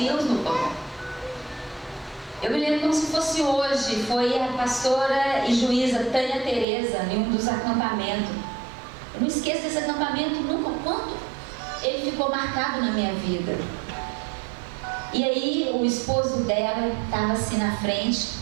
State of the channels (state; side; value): drops out; left; at 6.7 s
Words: no colo. Eu me lembro como se fosse hoje, foi a pastora e juíza Tânia Teresa em um dos acampamentos. Eu não esqueço desse acampamento nunca, quanto ele ficou marcado na minha vida. E aí o esposo dela estava assim na frente